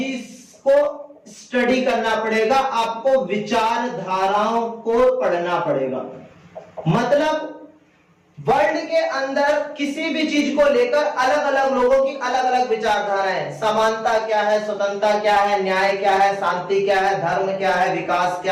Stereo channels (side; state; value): both; identical; correlation 1.00